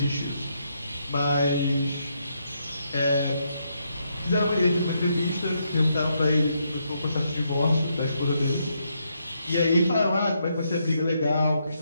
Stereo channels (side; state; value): both; inverted; correlation -0.78